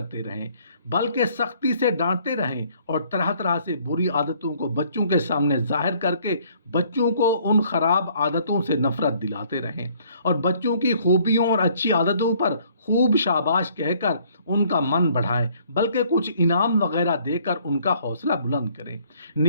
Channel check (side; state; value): both; inverted; correlation -0.61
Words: रहें, बल्कि सख्ती से डांटते रहें और तरह तरह से बुरी आदतों को बच्चों के सामने जाहिर करके बच्चों को उन खराब आदतों से नफरत दिलाते रहें और बच्चों की खूबियों और अच्छी आदतों पर खूब शाबाश कहकर उनका मन बढ़ाएं, बल्कि कुछ इनाम वगैरह देकर उनका हौसला बुलंद करें।